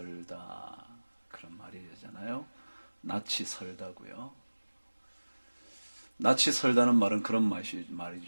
그런 말이잖아요. 낯이 설다고요. 낯이 설다는 말은 그런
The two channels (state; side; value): inverted; both; correlation -1.00